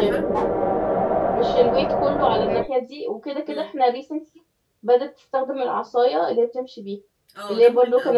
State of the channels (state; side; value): identical; both; correlation 1.00